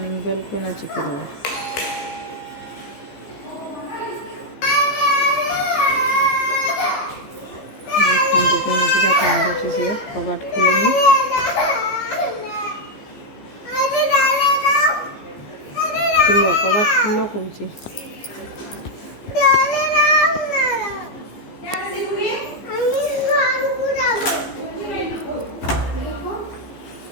बेल को ना चिपी दो। देखंतु केमितिका कांदुची से कबाट खुलुनी। खुलो कबाट खुलो कहूची।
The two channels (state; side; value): late; right; 14 ms